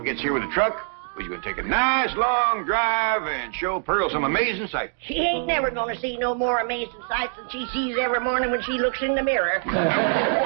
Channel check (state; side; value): silent; left; 63 dB below the other